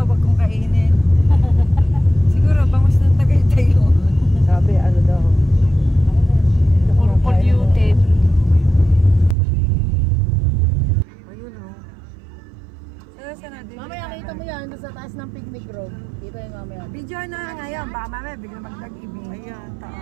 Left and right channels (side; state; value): left; drops out; at 9.3 s